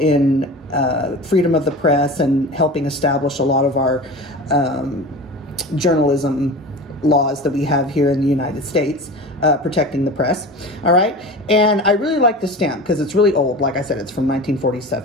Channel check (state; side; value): normal; both; correlation 0.33